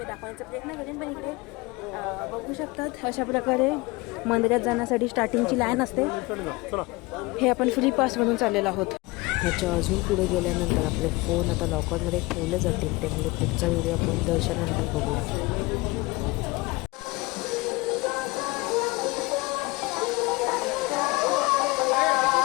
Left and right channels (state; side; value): quieter; right; 23.4 dB